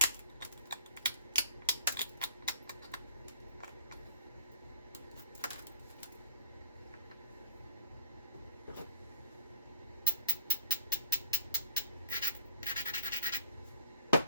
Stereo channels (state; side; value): inverted; both; correlation -0.41